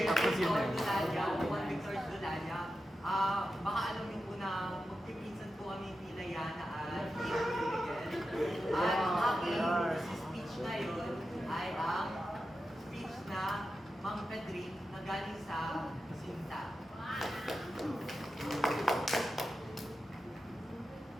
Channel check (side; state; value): both; normal; correlation 0.91